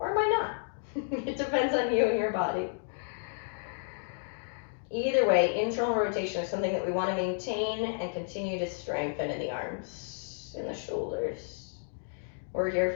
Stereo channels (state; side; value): silent; right; digital silence